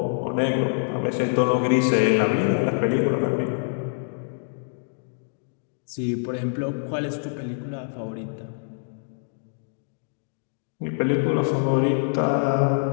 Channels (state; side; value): silent; right; digital silence